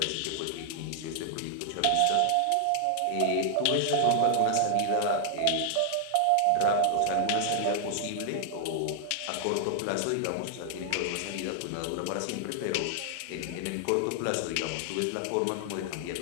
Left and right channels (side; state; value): both; different; correlation 0.00